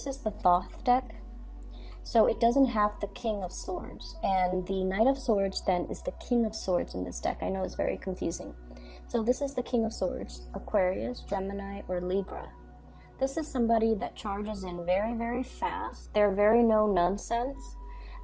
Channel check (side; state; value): both; identical; correlation 1.00